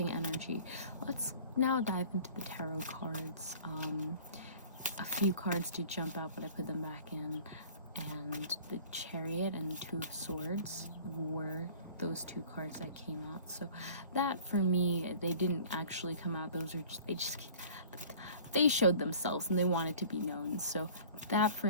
energy. Let's now dive into the tarot cards. A few cards did jump out, but I put them back in. and the Chariot and Two of Swords were those two cards that came out. So that, for me, they didn't actually come out. Those are just they showed themselves and they wanted to be known. So that,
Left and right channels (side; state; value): both; inverted; correlation -0.47